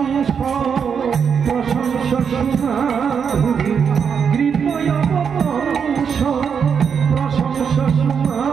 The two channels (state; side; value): quieter; left; 6.8 dB